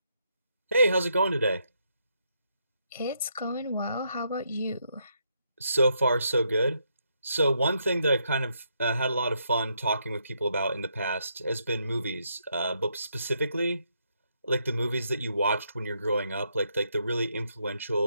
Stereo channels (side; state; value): both; inverted; correlation -0.77